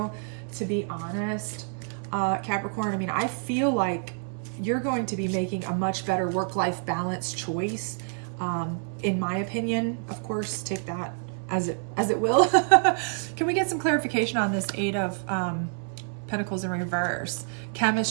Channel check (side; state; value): left; silent; 60 dB below the other